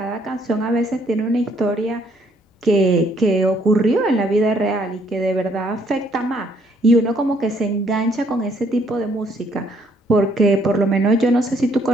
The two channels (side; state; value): both; normal; correlation 0.67